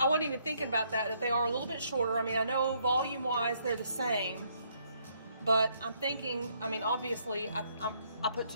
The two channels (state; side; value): inverted; both; correlation -0.70